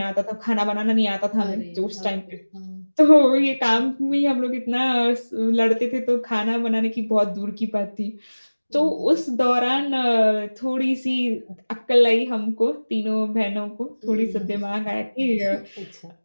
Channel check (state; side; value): inverted; both; correlation -1.00